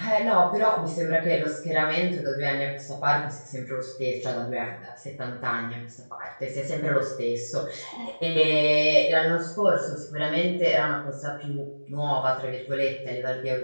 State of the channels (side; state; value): both; inverted; correlation -1.00